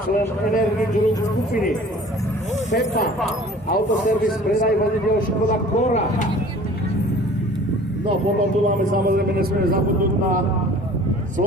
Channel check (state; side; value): normal; both; correlation 0.47